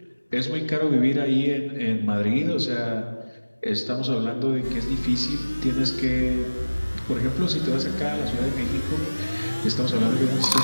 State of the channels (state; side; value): inverted; both; correlation -1.00